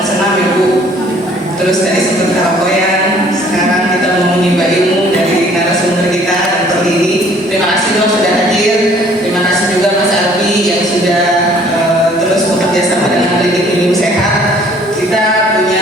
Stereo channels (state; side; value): normal; both; correlation 0.57